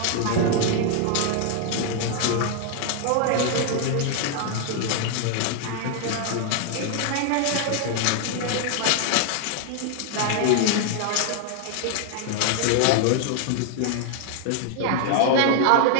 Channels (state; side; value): different; both; correlation 0.00